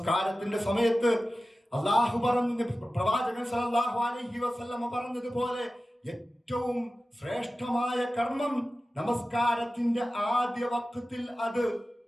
സമയത്ത് അള്ളാഹു പറഞ്ഞു, പ്രവാചകൻ സല്ലല്ലാഹു അലൈഹി വസല്ലമ പറഞ്ഞതുപോലെ ഏറ്റവും ശ്രേഷ്ഠമായ കർമ്മം നമസ്കാരത്തിന്റെ ആദ്യ വഖത്തിൽ അത്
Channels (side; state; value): both; normal; correlation 0.95